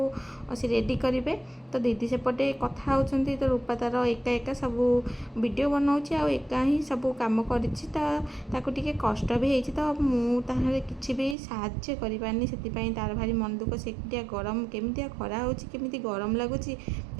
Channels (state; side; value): drops out; left; at 11.4 s